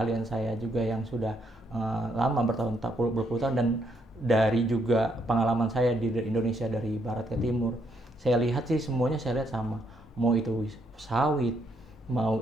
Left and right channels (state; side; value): normal; both; correlation 0.74